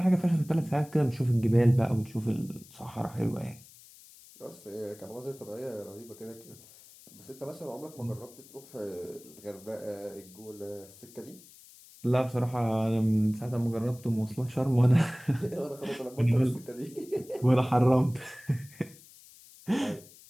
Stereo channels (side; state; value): left; noise; hiss, 22 dB below the sound